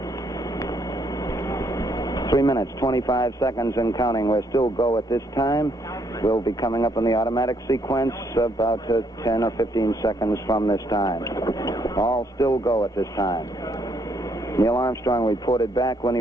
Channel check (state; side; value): normal; both; correlation 0.71